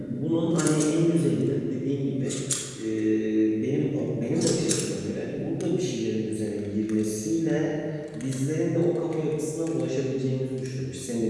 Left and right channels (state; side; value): identical; both; correlation 1.00